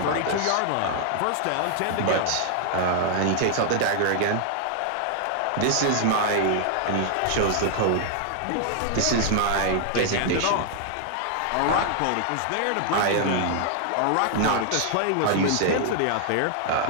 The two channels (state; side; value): different; both; correlation 0.00